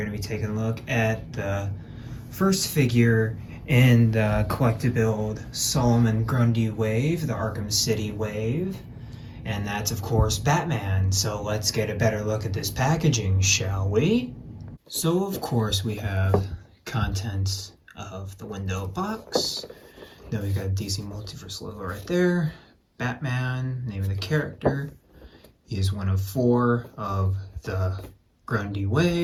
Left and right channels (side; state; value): both; identical; correlation 1.00